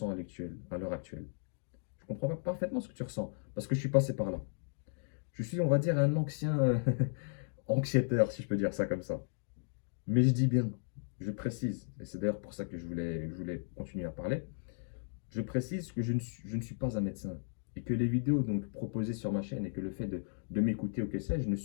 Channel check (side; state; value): right; silent; digital silence